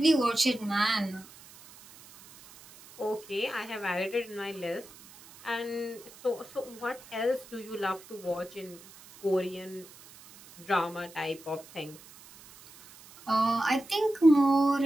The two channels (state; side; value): noise; right; hiss, 21 dB below the sound